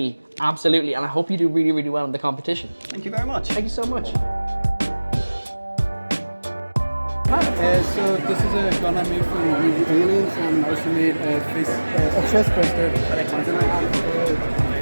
absolutely, and I hope you do really, really well in the competition. Thank you very much. Thank you so much. So this is a gun I made from using aliens, and I also made a chest burster, and then I have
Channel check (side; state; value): both; inverted; correlation -1.00